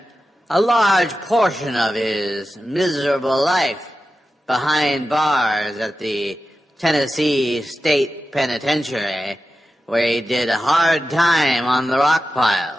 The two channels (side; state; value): both; normal; correlation 0.92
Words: a large portion of his miserable life behind bars at the Tennessee State Penitentiary, where he did a hard time on the rock